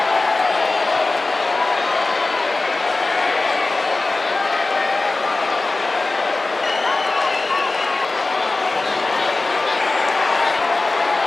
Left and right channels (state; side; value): quieter; right; 3.3 dB